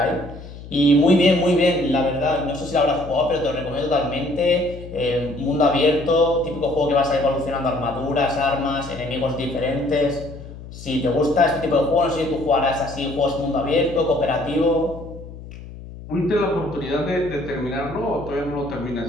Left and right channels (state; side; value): noise; left; hum, 14 dB below the sound